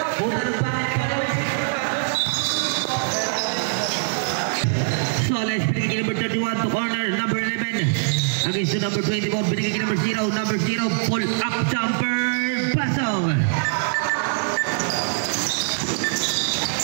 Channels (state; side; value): silent; left; 60 dB below the other